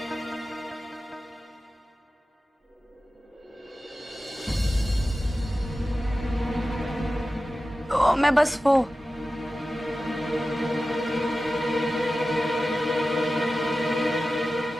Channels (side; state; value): both; normal; correlation 0.94